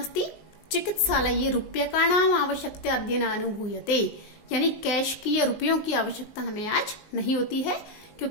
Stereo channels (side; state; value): right; late; 19 ms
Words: चिकित्सालये रूप्यकाणाम आवश्यकता अद्यनानुभूयते, यानी कैश की या रुपयों की आवश्यकता हमें आज नहीं होती है,